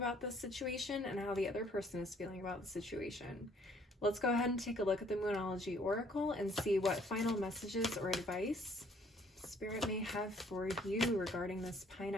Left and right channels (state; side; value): normal; both; correlation 0.62